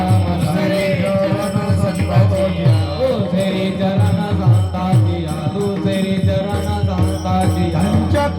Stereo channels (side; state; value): both; identical; correlation 1.00